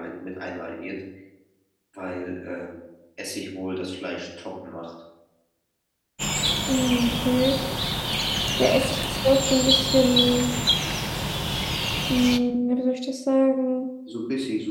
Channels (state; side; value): identical; both; correlation 1.00